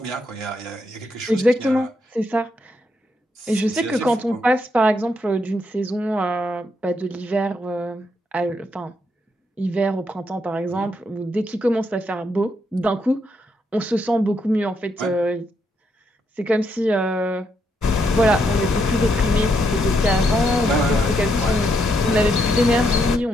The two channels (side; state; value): both; normal; correlation 0.77